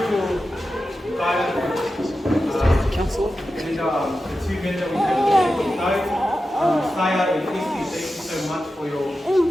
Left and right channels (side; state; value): both; normal; correlation 0.92